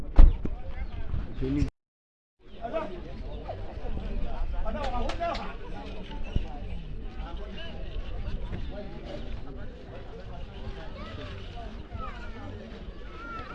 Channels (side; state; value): both; identical; correlation 1.00